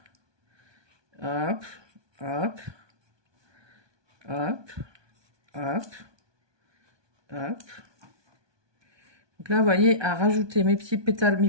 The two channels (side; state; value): left; late; 1.2 ms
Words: hop, hop, hop, hop, hop. Donc là, vous voyez, à rajouter mes petites